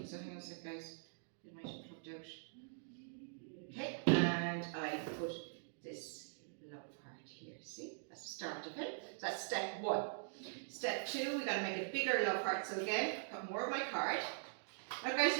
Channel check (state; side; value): silent; left; digital silence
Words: so hang on a sec guys, it might have plugged out. Okay, and I put this love heart here, see? That's the start of it. So that's step 1. Step 2, we got to make a bigger love heart. So again, got more of my card. Now guys,